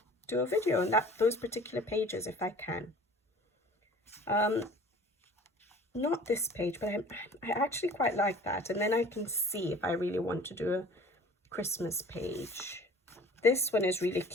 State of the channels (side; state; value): both; normal; correlation 0.46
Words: a video on those particular pages if I can. Not this page, but I actually quite like that. And then I can see if I really want to do a Christmas page. This one is really